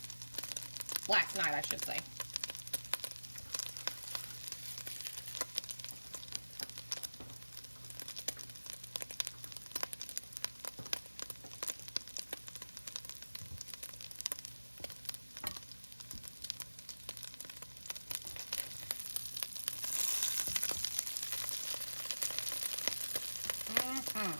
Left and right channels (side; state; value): both; inverted; correlation -1.00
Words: Last night, I should say.